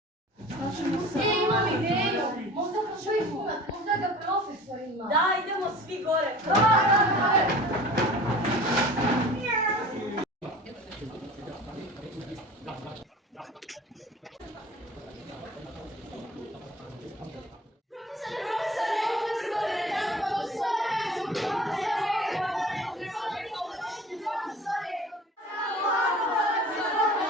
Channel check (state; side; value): normal; both; correlation 0.42